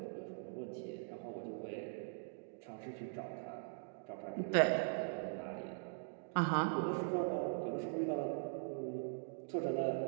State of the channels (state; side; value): silent; left; digital silence